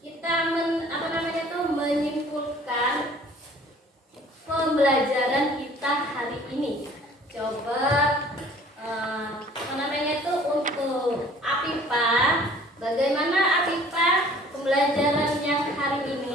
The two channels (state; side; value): normal; both; correlation 0.52